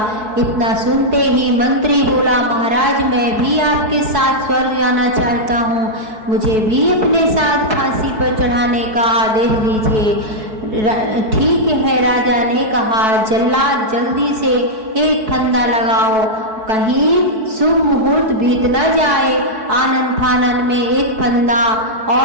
इतना सुनते ही मंत्री बोला, महाराज, मैं भी आपके साथ स्वर्ग जाना चाहता हूँ, मुझे भी अपने साथ फांसी पर चढ़ाने का आदेश दीजिए। ठीक है, राजा ने कहा, जल्लाद जल्दी से एक फंदा लगाओ, कहीं शुभ मुहूर्त बीत न जाए। आनन फानन में एक फंदा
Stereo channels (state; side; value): late; left; 4.6 ms